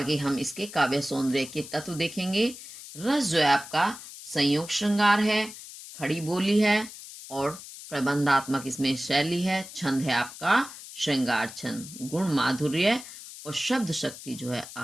हम इसके काव्य सौंदर्य के तत्व देखेंगे। रस जो है आपका संयोग श्रृंगार है, खड़ी बोली है और प्रबंधात्मक इसमें शैली है। छंद है आपका श्रृंगार छंद, गुण माधुर्य और शब्द शक्ति जो है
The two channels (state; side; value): noise; left; hiss, 14 dB below the sound